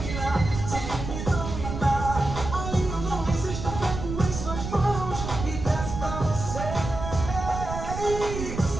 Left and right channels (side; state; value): right; noise; rumble, 6 dB below the sound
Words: Sem me dominar. Aí eu não resisto, pego em suas mãos e desço pra você.